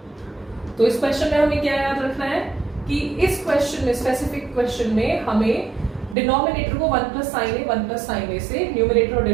तो इस question में हमें क्या याद रखना है कि इस क्वेश्चन में, स्पेसिफिक क्वेश्चन में, हमें डिनोमिनेटर को 1 plus sine A 1 plus sine a से न्यूमरेटर और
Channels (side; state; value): left; drops out; at 6.2 s